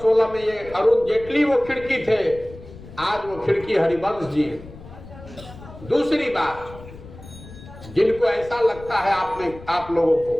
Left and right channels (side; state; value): left; noise; rumble, 17 dB below the sound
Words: में ये अरुण जेटली वो खिड़की थे, आज वो खिड़की हरिवंश जी। दूसरी बात, जिनको ऐसा लगता है आप लोगों को